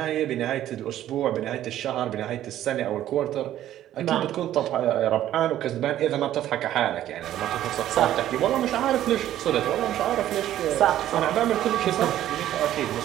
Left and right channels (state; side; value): quieter; left; 12.5 dB